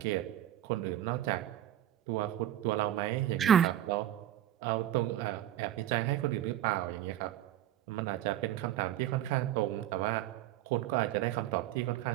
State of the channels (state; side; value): quieter; left; 12.3 dB